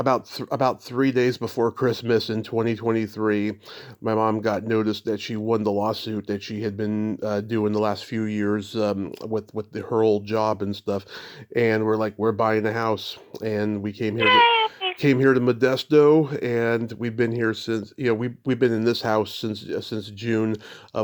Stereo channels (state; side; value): identical; both; correlation 1.00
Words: 3 days before Christmas in 2023, my mom got notice that she won the lawsuit that she had been doing the last few years with her old job and stuff, and we're buying a house, and we came here to Modesto, and we've been here since we've been in this house since June